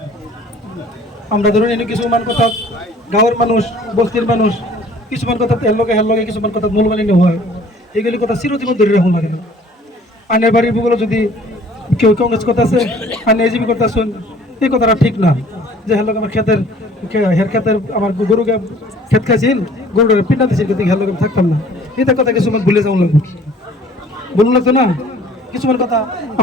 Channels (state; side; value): normal; both; correlation 0.53